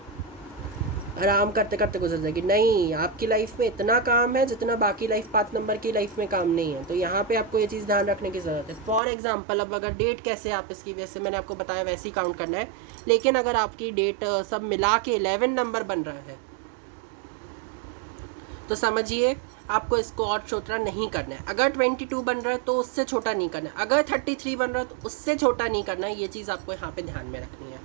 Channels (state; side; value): drops out; left; at 9.0 s